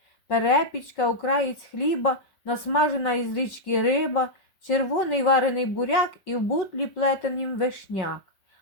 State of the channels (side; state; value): right; late; 5.2 ms